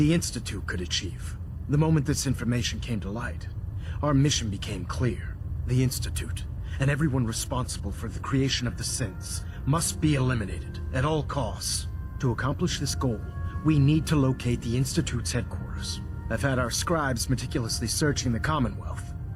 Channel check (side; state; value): both; identical; correlation 1.00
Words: Institute could achieve. The moment this information came to light, our mission became clear. The Institute, and everyone responsible for the creation of the synths, must be eliminated at all costs. To accomplish this goal, we need to locate the Institute's headquarters. I've had our scribes meticulously searching the Commonwealth,